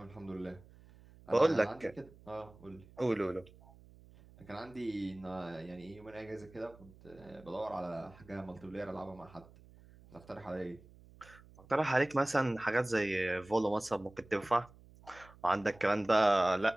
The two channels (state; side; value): noise; right; hum, 23 dB below the sound